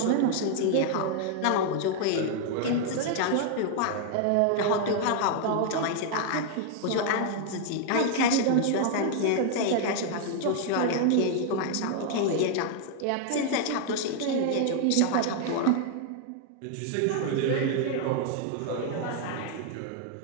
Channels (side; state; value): both; different; correlation 0.00